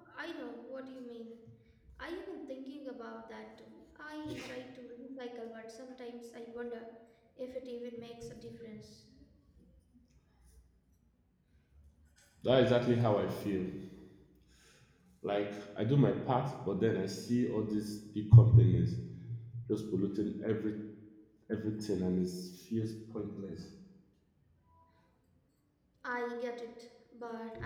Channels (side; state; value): both; identical; correlation 1.00